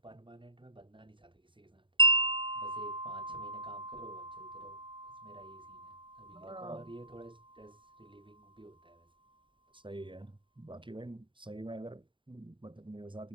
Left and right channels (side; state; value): left; late; 0.24 ms